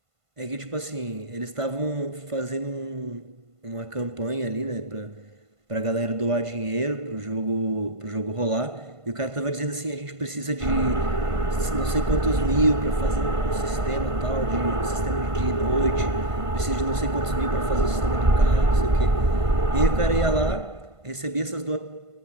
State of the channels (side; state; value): left; late; 1.5 ms